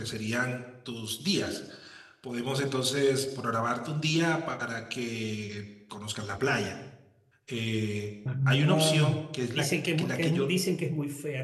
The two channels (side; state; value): both; identical; correlation 1.00